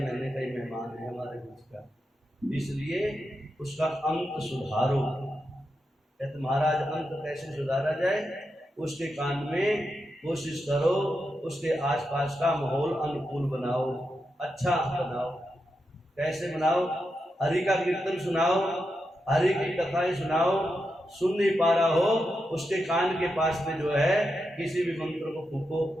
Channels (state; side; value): normal; both; correlation 0.86